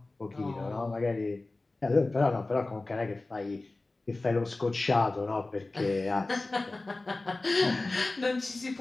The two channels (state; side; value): quieter; right; 3.1 dB